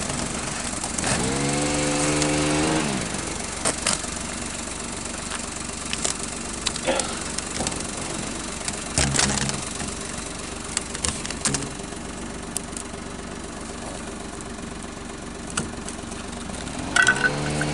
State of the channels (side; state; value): both; identical; correlation 1.00